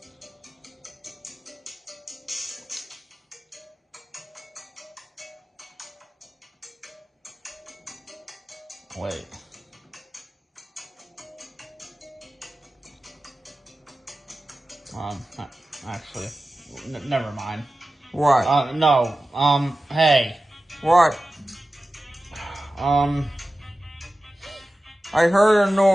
Wait. Actually, never mind. What? No, hey. What? I heard a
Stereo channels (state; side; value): normal; both; correlation 0.94